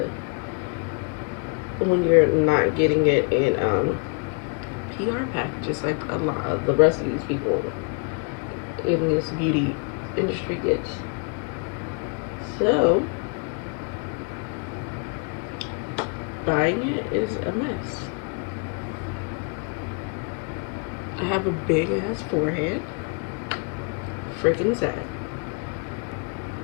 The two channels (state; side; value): quieter; right; 36.2 dB